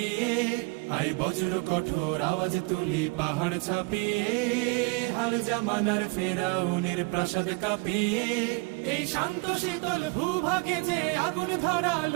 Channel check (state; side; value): quieter; left; 27.9 dB